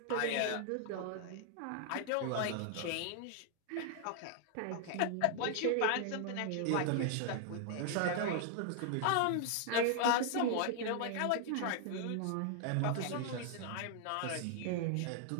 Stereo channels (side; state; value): both; different; correlation 0.00